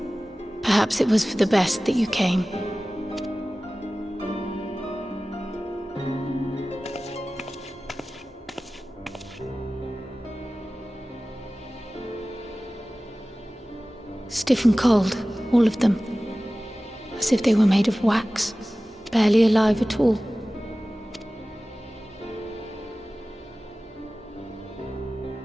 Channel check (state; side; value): normal; both; correlation 0.97